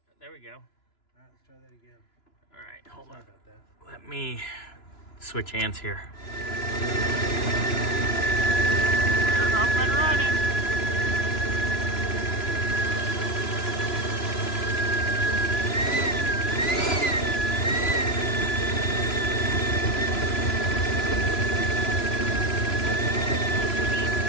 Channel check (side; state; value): right; late; 2.9 ms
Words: There we go. All right, let's try that again. All right, hold on. Sorry about that. Let me switch hands here. We're up and running.